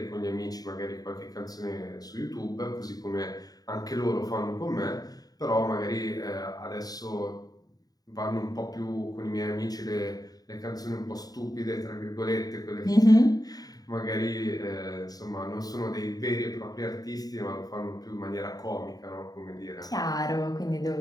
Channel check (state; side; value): late; right; 0.18 ms